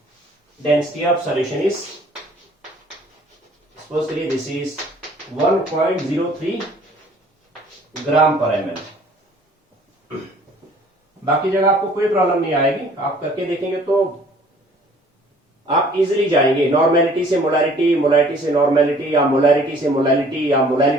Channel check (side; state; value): both; normal; correlation 0.55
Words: density of solution is, suppose करिए this is 1.03 gram per ml। बाकी जगह आपको कोई प्रॉब्लम नहीं आएगी, आप करके देखेंगे तो आप इजीली जाएंगे। नॉर्मेलिटी से मोलैलिटी, मोलैलिटी से नॉर्मेलिटी, या मोलैलिटी से मोलैलिटी, या